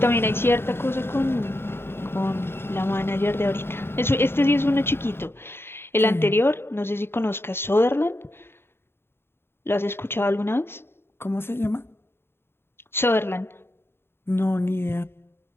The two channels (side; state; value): right; late; 0.11 ms